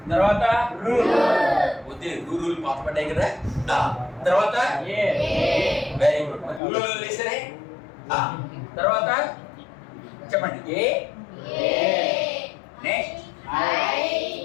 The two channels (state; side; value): drops out; right; at 6.6 s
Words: తర్వాత వద్దే రూలు పాత పడ్డాయి కదా. తర్వాత వెరీ గుడ్, రూలు లేసరే. తర్వాత చెప్పండి. ఏ నెక్స్ట్